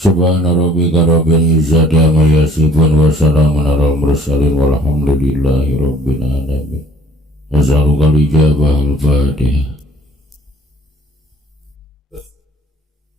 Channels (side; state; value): both; normal; correlation 0.56